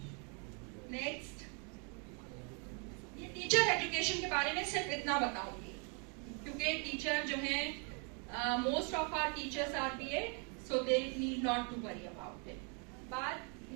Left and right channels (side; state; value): left; quieter; 37.0 dB